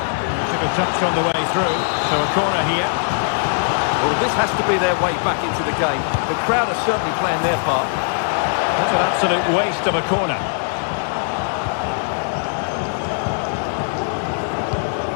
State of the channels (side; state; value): right; silent; digital silence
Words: Took a touch on the way through, so a corner here. Well, this has to be their way back into the game. The crowd are certainly playing their part. That's an absolute waste of a corner.